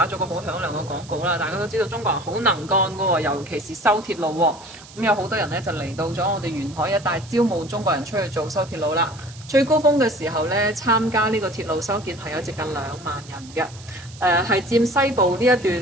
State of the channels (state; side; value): noise; right; hiss, 20 dB below the sound